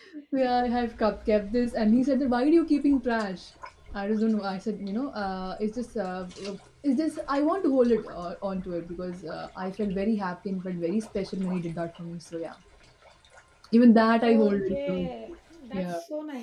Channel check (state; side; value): identical; both; correlation 1.00